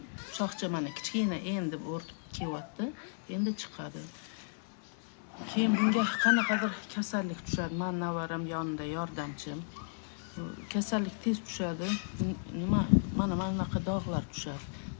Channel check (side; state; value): right; silent; digital silence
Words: shoxcha mana kichkina endi o'rtib kelyapti. Endi chiqadi. Keyin bunga qanaqadir kasallik tushadi. Men navaram yonida yordamchim. Kasallik tez tushadi. Nima mana bunaqa dog'lar tushadi.